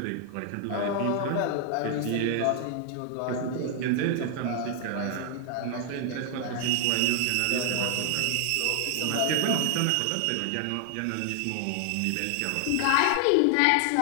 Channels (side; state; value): both; different; correlation 0.00